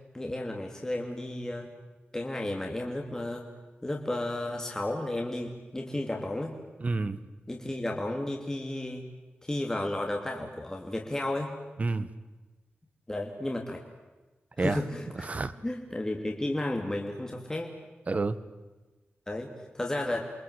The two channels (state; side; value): normal; both; correlation 0.94